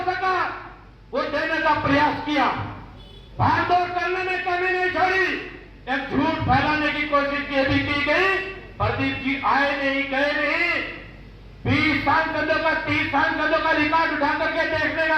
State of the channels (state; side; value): identical; both; correlation 1.00